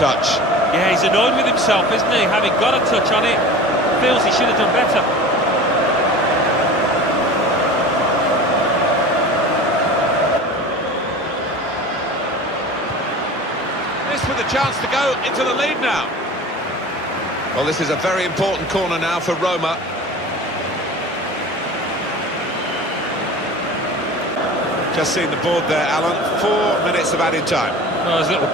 Yeah, he's annoyed with himself, isn't he? Having got a touch on it, feels he should have done better. This with a chance to go into the lead now. Well, this is a very important corner now for Roma. Just seen the board there, Alan. 4 minutes of added time. Oh, there's a little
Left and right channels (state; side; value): normal; both; correlation 0.37